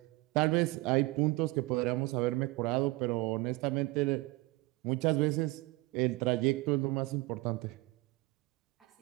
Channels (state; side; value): quieter; left; 22.7 dB